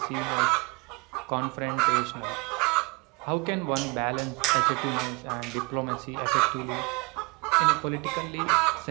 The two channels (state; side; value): quieter; left; 28.3 dB